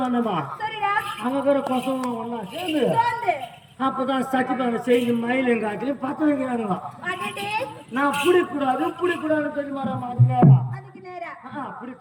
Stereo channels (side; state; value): both; identical; correlation 1.00